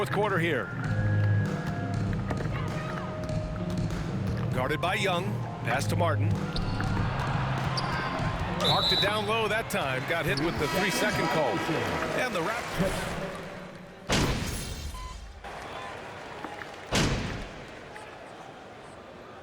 quarter here. Guarded by Young. Pass to Martin. Marked it down low that time. Got hit with the 3-second call. And the Raptors.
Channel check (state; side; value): identical; both; correlation 1.00